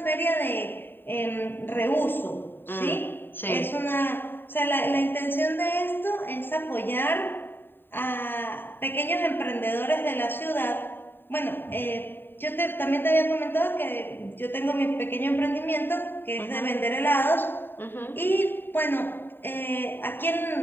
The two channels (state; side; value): late; right; 0.097 ms